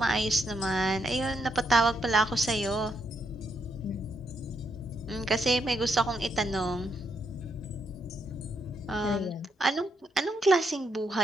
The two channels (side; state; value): both; normal; correlation 0.78